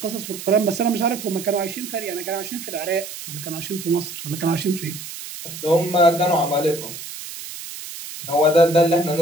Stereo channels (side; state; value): right; noise; hiss, 11 dB below the sound